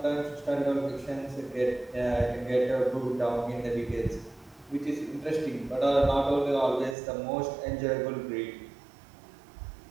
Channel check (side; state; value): left; drops out; at 7.0 s